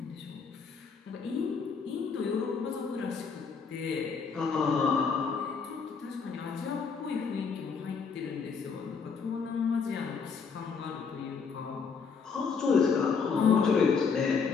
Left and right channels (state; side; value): quieter; right; 5.6 dB